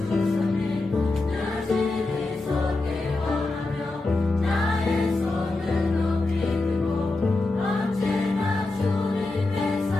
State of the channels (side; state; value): right; quieter; 3.1 dB